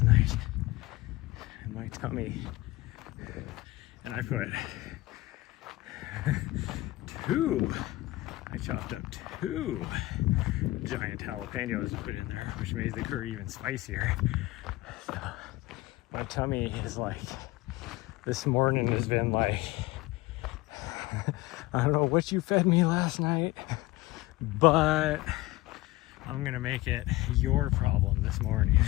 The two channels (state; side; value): quieter; right; 19.1 dB